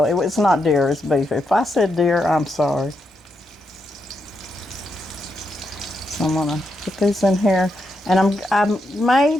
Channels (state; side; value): normal; both; correlation 0.83